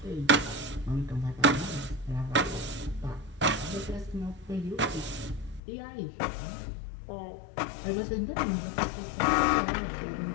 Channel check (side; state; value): right; drops out; at 5.6 s